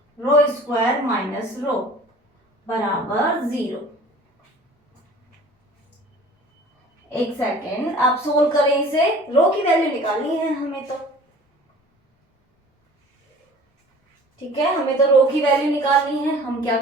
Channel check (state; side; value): normal; both; correlation 0.46